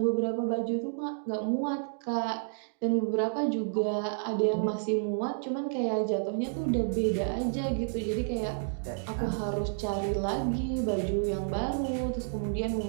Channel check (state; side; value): silent; left; digital silence